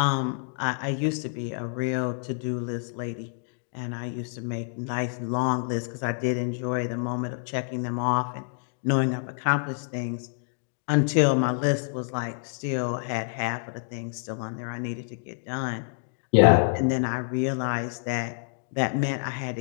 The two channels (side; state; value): right; silent; digital silence